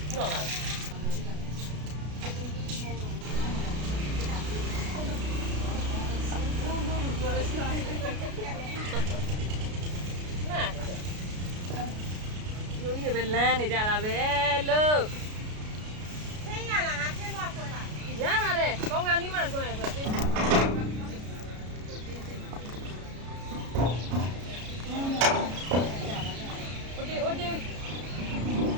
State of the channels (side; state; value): left; late; 33 ms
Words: 不让了。有一边懒的家了呗，喽。天呀，那天多回来。呀嘛的，刚刚你们说的是。